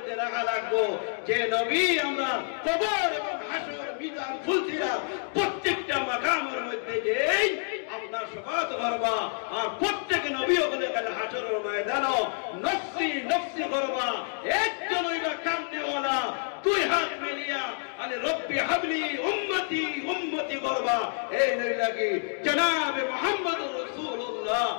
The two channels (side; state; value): right; silent; 59 dB below the other